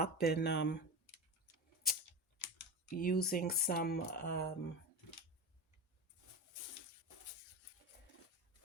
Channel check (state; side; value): normal; both; correlation 0.23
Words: and using some